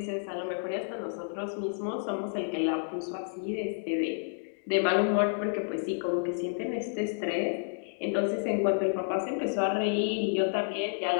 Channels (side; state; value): right; silent; digital silence